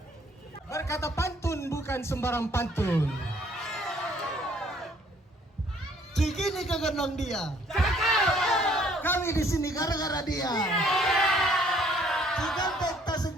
Berkata pantun bukan sembarang pantun. Cikini kegendong dia. Kami di sini gara-gara dia. Cikampek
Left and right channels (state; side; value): normal; both; correlation 0.61